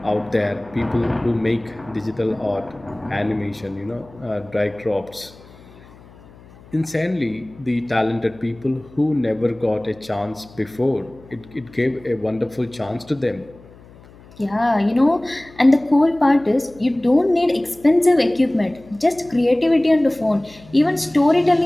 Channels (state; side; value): noise; left; hum, 23 dB below the sound